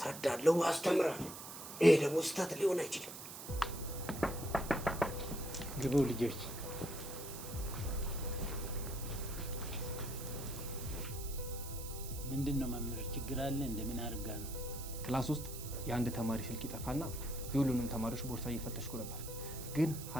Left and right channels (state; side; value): noise; right; hiss, 11 dB below the sound